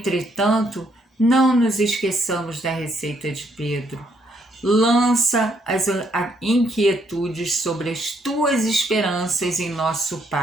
não nos esqueçamos da receita de Pedro. Lança as inquietudes sobre as tuas esperanças em nosso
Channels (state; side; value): normal; both; correlation 0.72